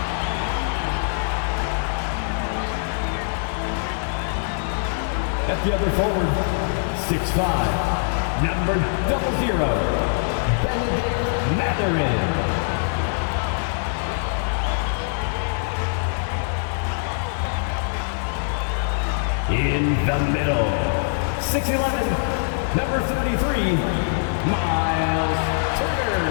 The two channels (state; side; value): silent; right; digital silence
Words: At the other forward, 6'5", number 00, Benedict Mathurin. In the middle, 6'11", number 33, Miles